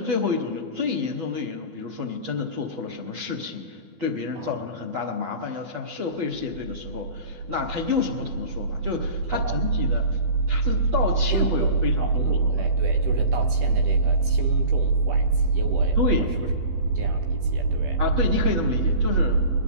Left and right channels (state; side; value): late; left; 12 ms